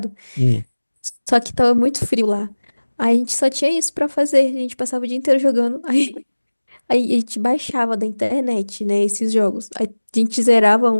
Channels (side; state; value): both; inverted; correlation -1.00